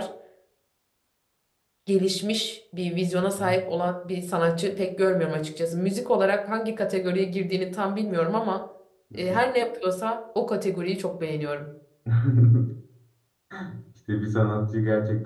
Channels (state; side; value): identical; both; correlation 1.00